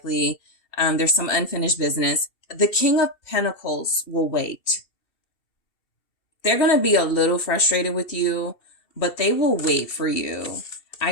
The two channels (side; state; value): right; late; 2.7 ms